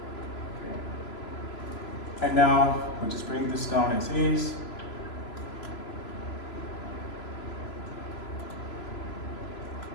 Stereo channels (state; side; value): late; right; 3.0 ms